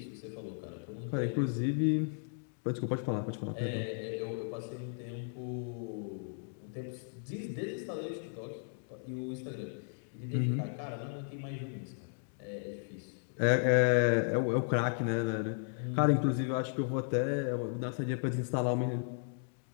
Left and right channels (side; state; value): right; silent; digital silence